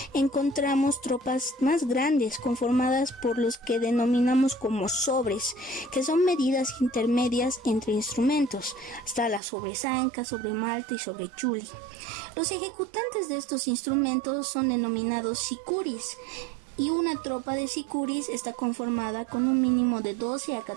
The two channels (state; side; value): drops out; left; at 9.4 s